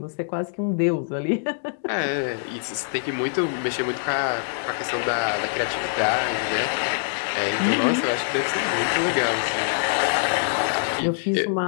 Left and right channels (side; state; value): right; silent; digital silence